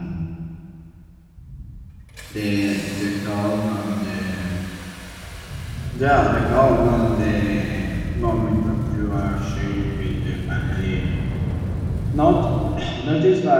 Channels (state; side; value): identical; both; correlation 1.00